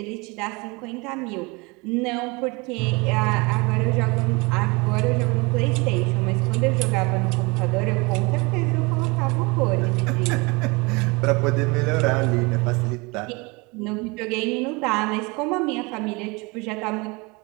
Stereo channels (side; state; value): left; quieter; 26.9 dB